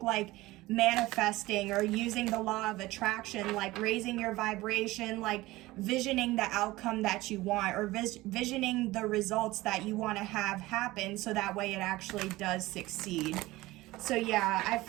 like manifesting, or using the law of attraction, like raising your vibration, like visioning the outcome that you want, or visioning the results that you want to have happen, so that way it actually does succeed. So yeah, I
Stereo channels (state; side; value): quieter; left; 18.9 dB